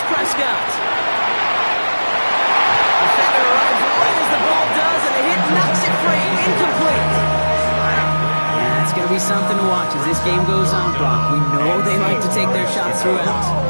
Prescott. Defender arrives right as the ball does, and the hit knocks it free. Incomplete. Yeah, it's going to be something to watch as this game goes on, Brock. We know they like to take their shots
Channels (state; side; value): inverted; both; correlation -1.00